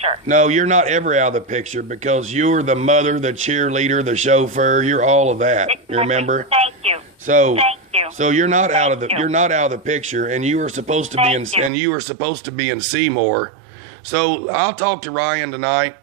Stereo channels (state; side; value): drops out; left; at 11.7 s